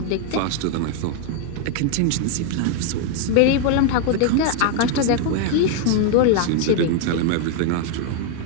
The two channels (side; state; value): both; different; correlation 0.00